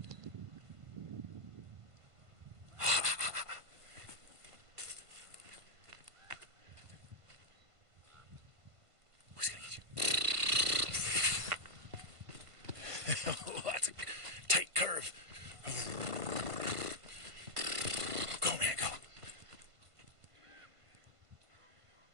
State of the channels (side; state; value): left; late; 1.5 ms